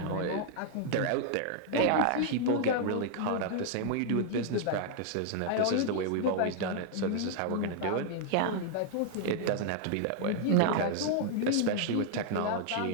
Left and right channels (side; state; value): both; different; correlation 0.00